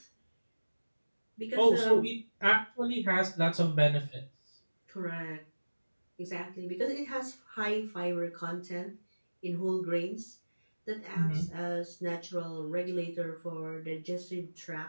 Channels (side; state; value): both; inverted; correlation -1.00